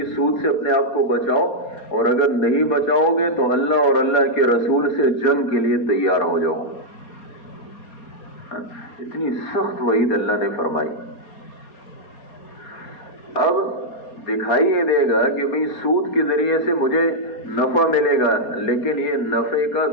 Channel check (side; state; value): right; late; 4.3 ms